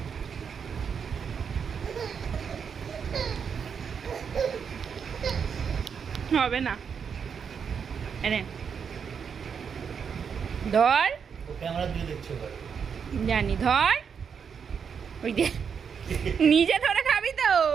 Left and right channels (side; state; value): left; quieter; 6.7 dB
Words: হবে না, এনে ধর, জানি ধর, ওই যে নিজে ধরে খাবি তো,